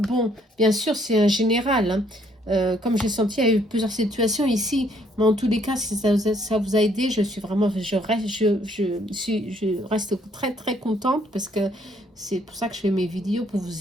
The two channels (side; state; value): both; normal; correlation 0.66